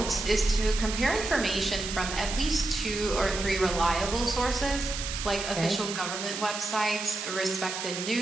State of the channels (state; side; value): noise; right; hiss, 5 dB below the sound